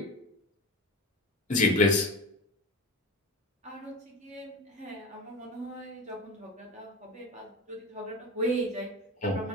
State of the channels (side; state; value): both; normal; correlation 0.28